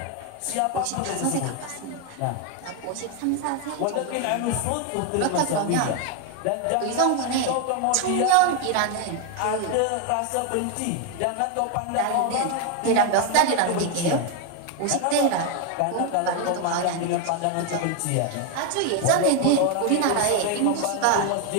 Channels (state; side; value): different; both; correlation 0.01